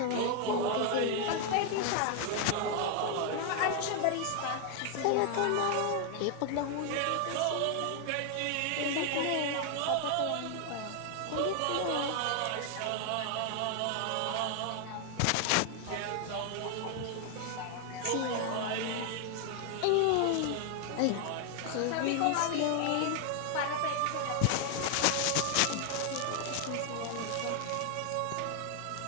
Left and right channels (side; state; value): both; different; correlation 0.00